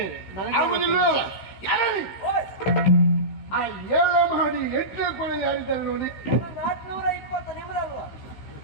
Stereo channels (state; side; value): late; right; 15 ms